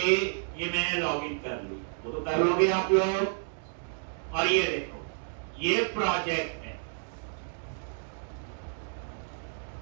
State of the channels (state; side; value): silent; left; digital silence